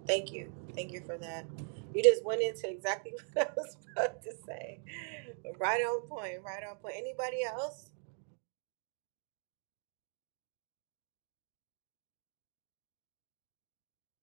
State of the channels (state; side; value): silent; left; 51 dB below the other